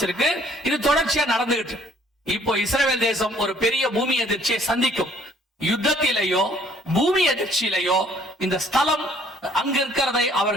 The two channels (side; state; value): both; normal; correlation 0.60